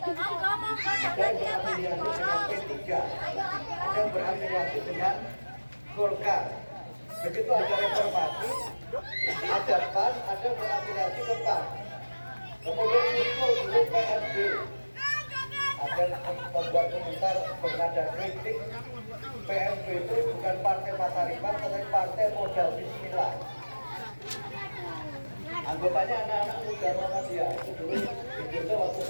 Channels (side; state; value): both; inverted; correlation -1.00